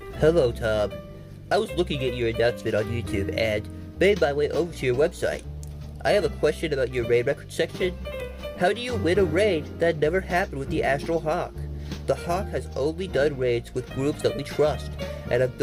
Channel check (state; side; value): identical; both; correlation 1.00